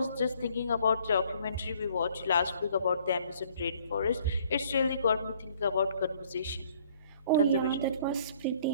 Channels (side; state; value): both; inverted; correlation -0.60